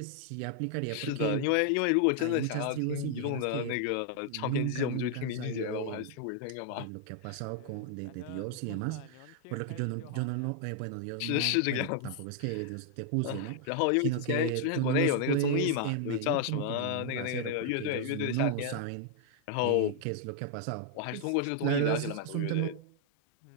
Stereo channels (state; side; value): different; both; correlation 0.00